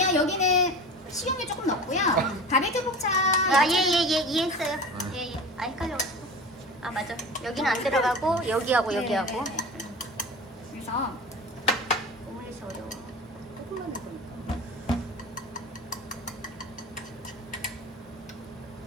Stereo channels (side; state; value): both; normal; correlation 0.34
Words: 여기는 식용유 조금 넣고요. 바비큐 포차 아예예예 이해했어요. 예예. 아 헷갈려가지고. 아 맞아. 여기는 안 들어가고 여기하고 여기하고. 네. 그래서 오므리스 어려워. 조금만 넣으니까